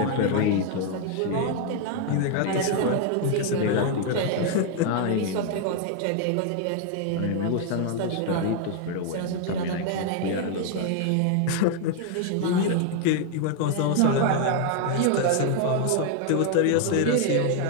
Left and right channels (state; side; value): different; both; correlation 0.00